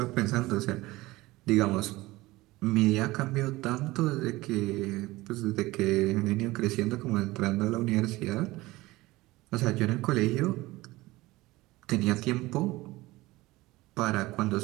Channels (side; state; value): left; quieter; 19.5 dB